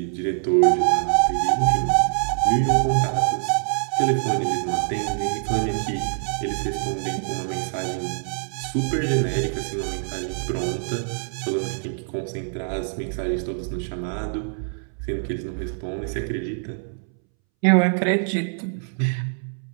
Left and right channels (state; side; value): silent; left; 62 dB below the other